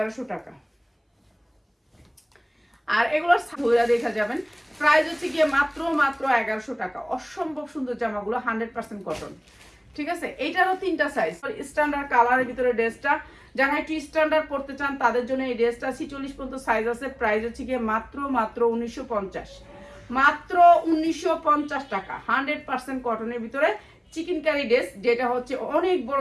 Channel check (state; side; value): identical; both; correlation 1.00